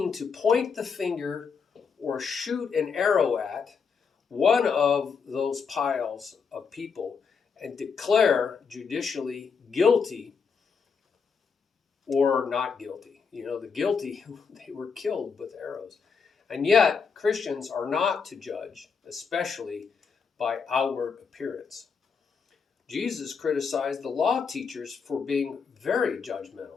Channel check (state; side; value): quieter; right; 5.7 dB